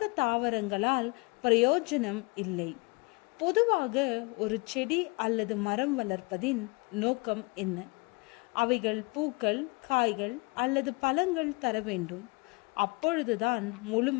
தாவரங்களால் பிரயோஜனம் இல்லை. பொதுவாக ஒரு செடி அல்லது மரம் வளர்ப்பதின் நோக்கம் என்ன? அவைகள் பூக்கள், காய்கள் அல்லது பழங்கள் தர வேண்டும். அப்பொழுதுதான்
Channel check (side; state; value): right; quieter; 28.7 dB